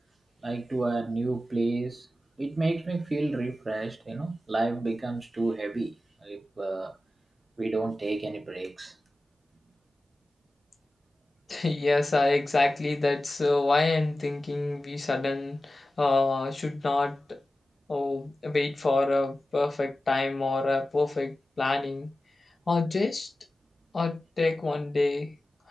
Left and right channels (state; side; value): normal; both; correlation 0.94